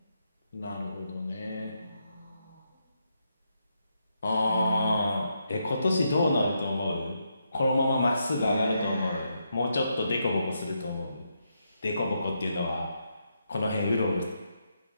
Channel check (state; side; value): inverted; both; correlation -0.81